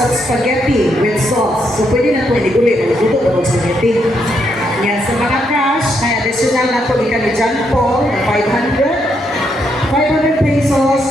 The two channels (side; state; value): both; normal; correlation 0.77